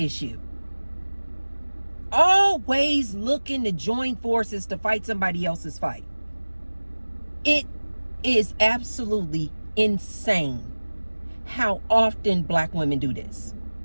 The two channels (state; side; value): inverted; both; correlation -1.00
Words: issue. Always looking to join forces to fight somebody else's fight. It is absolutely insane how often black women do this.